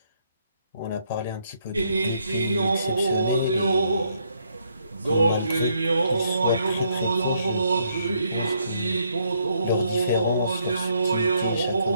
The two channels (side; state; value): both; inverted; correlation -0.72